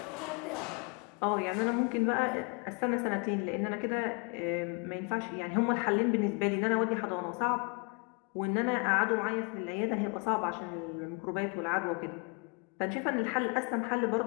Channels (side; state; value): right; quieter; 33.9 dB